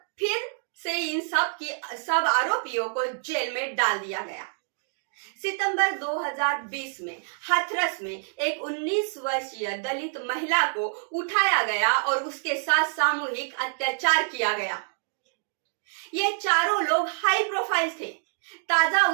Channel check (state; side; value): silent; left; digital silence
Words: फिर से इन सब आरोपियों को जेल में डाल दिया गया। सितंबर 2020 में हाथरस में एक 19 वर्षीय दलित महिला को उठाया गया और उसके साथ सामूहिक अत्याचार किया गया। ये चारों लोग हाई प्रोफाइल थे। ताजा